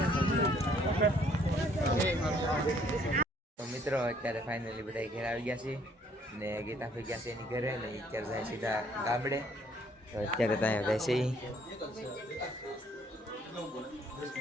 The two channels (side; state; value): both; normal; correlation 0.63